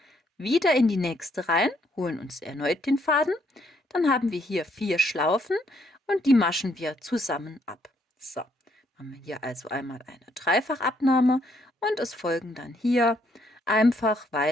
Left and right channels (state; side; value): normal; both; correlation 0.71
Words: wieder in die nächste rein, holen uns erneut den Faden, dann haben wir hier 4 Schlaufen und die maschen wir zusammen ab. So, haben wir hier also einmal eine Dreifachabnahme und es folgen dann hier einfach